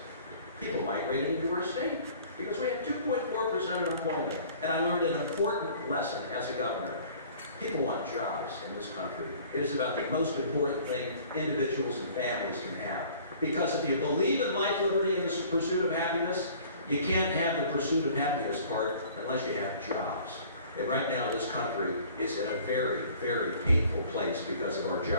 people migrated into our state because we had 2.4% unemployment. And I learned an important lesson as a governor. People want jobs in this country. It is about the most important thing individuals and families can have. Because if you believe in life, liberty, and the pursuit of happiness, you can't have the pursuit of happiness part unless you have jobs. And right now, this country is in a very, very painful place because of our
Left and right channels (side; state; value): both; inverted; correlation -0.51